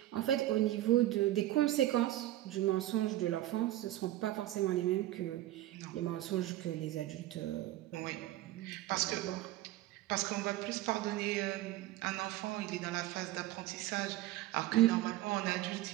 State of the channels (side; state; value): left; quieter; 15.2 dB